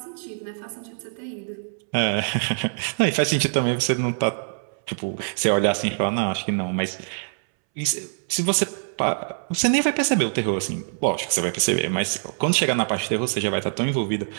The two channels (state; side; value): silent; left; 62 dB below the other